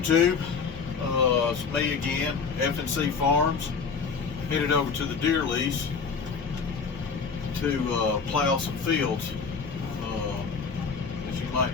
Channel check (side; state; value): right; quieter; 5.4 dB